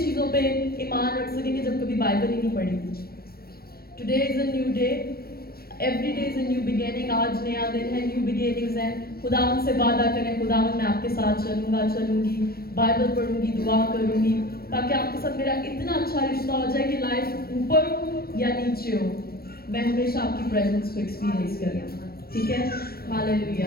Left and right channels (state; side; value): late; right; 0.44 ms